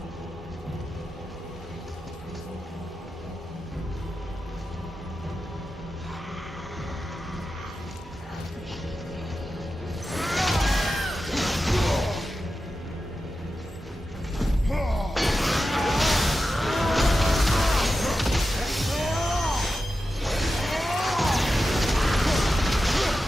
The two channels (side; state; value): both; normal; correlation 0.91